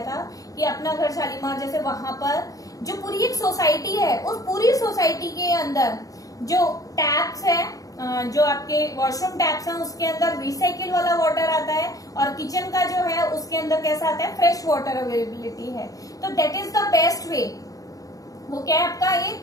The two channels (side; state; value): right; late; 0.17 ms